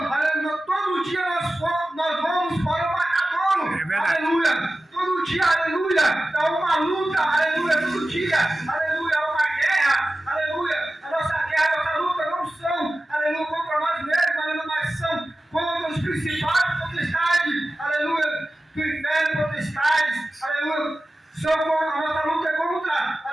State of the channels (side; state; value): both; normal; correlation 0.95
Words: aleluia, todo dia nós vamos para o matadouro, aleluia, todo dia, aleluia, é uma luta, aleluia, todo dia, aleluia, é uma guerra, aleluia, a nossa guerra, a nossa luta não são, aleluia, contra nós mesmos, aleluia, mas são contra os principados, potestades, aleluia, do inferno, potestades, aleluia, a nossa luta é contra,